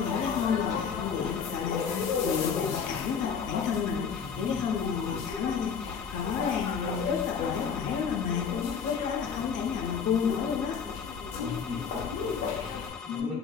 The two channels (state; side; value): quieter; right; 6.5 dB